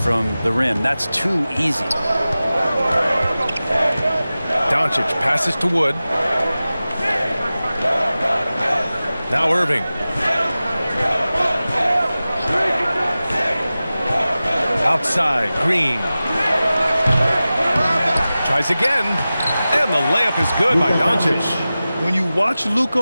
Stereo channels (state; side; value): inverted; both; correlation -0.96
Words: the rim. That's too easy. Doncic passes to Wood. Now Irving. Outside, Green. Tries again. And the layup is good by Doncic. When you watch